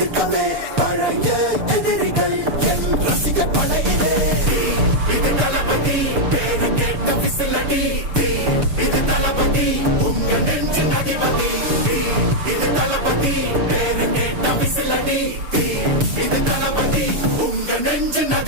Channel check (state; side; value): late; left; 6.8 ms